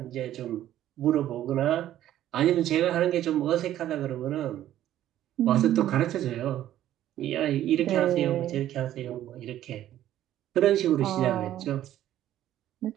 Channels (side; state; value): left; quieter; 12.5 dB